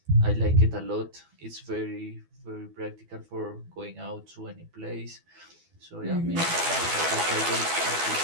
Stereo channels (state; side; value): late; left; 12 ms